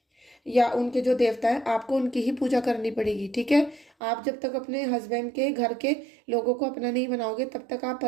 या उनके जो देवता है, आपको उनकी ही पूजा करनी पड़ेगी, ठीक है। आप जब तक अपने हस्बैंड के घर के लोगों को अपना नहीं बनाओगे तब तक आप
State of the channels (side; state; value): left; drops out; at 3.9 s